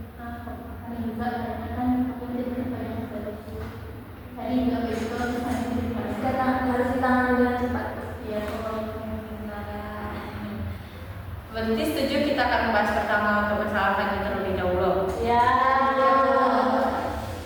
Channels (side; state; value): both; identical; correlation 1.00